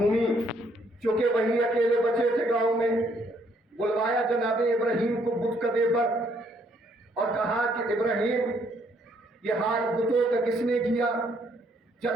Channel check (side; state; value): both; normal; correlation 0.68